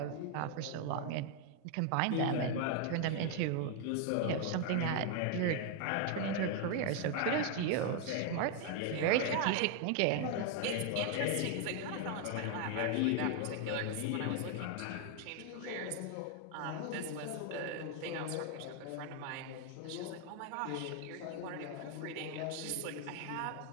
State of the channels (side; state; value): both; different; correlation 0.00